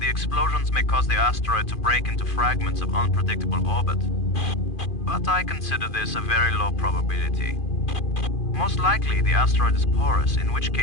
explosions may cause the asteroid to break into fragments of unpredictable orbit. But I consider this a very low probability. Most likely, the asteroid is porous, in which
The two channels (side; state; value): right; late; 2.5 ms